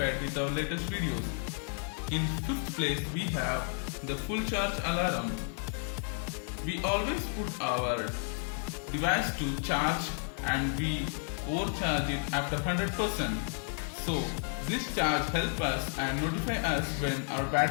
with our latest videos. In 5th place we have the full charge alarm. We always put our device to charge and we overcharge it after 100%. So this charge helps us and notify us when our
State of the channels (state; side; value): silent; right; 56 dB below the other